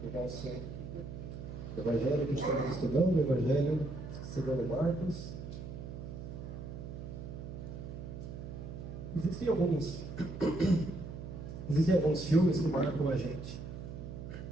do nosso Evangelho que estamos estudando, o Evangelho segundo Marcos. Existem alguns filmes que marcam a gente.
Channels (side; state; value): right; noise; hum, 9 dB below the sound